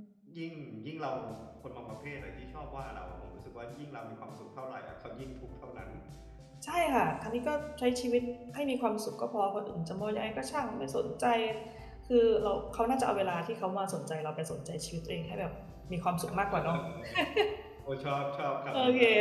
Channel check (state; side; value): identical; both; correlation 1.00